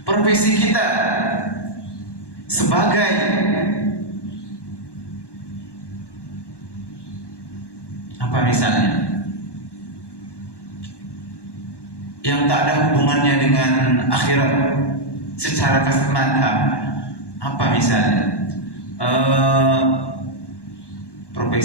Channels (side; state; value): right; late; 1.1 ms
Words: profesi kita sebagai apa misalnya, yang tak ada hubungannya dengan akhirat secara kasat mata, apa misalnya,